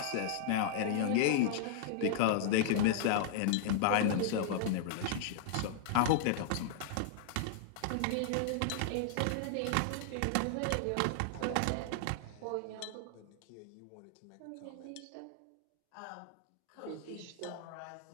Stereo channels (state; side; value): different; both; correlation -0.01